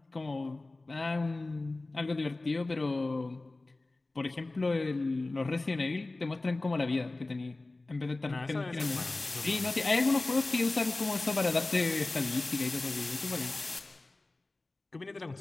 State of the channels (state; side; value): quieter; right; 3.1 dB